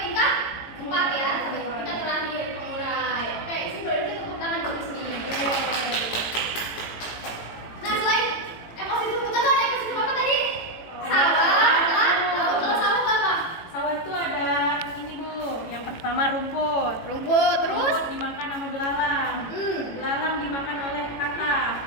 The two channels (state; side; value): late; right; 18 ms